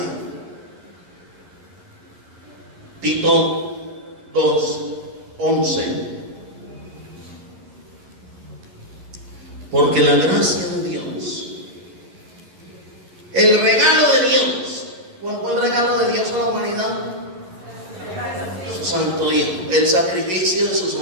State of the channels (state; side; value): late; left; 11 ms